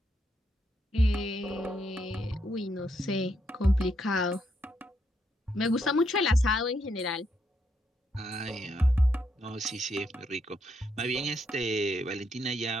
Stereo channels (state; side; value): normal; both; correlation 0.77